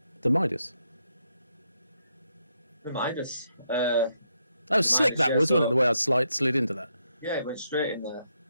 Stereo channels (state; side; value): inverted; both; correlation -0.79